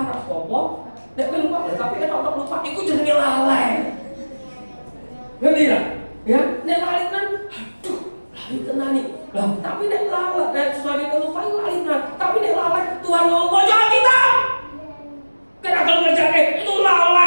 rapopo. Nek kowe lupa, tapi kan otak lupa iku jenenge lalai. Ngerti lah? Ya, nek lalai kan aduh, lalai tenan nih. Lah, tapi nek lalai, nek sesuatu yang lupa lalai tenan. Tapi nek lalai Tuhan ngomong jangan kita. Kena kalau ngerjain itu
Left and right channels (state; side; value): inverted; both; correlation -1.00